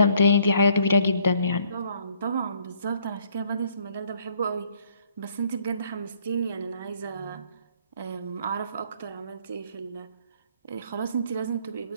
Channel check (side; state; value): both; inverted; correlation -0.64